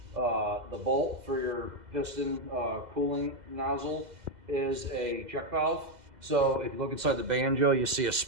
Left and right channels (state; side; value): late; left; 2.0 ms